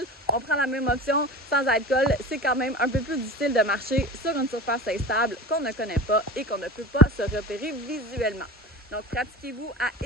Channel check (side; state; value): both; normal; correlation 0.32